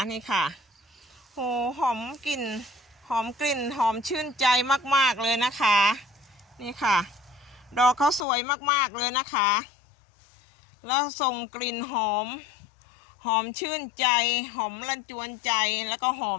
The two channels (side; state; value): right; drops out; at 8.2 s